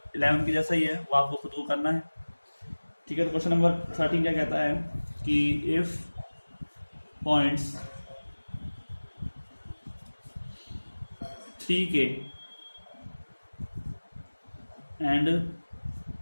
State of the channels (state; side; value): inverted; both; correlation -1.00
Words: 11 की जैसा ही है, वो आपको खुद को करना है। ठीक है, तो क्वेश्चन नंबर 13 क्या कहता है कि if points 3k and